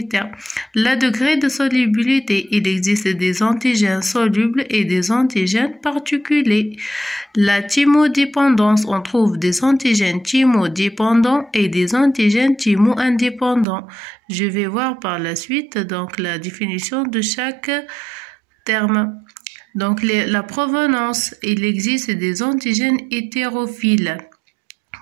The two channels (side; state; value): left; drops out; at 13.7 s